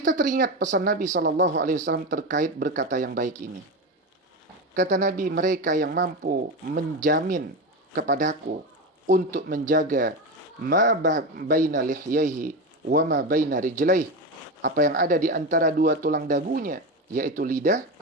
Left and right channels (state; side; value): normal; both; correlation 0.18